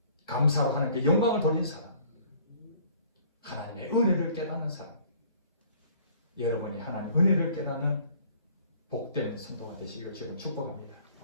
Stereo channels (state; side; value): inverted; both; correlation -0.55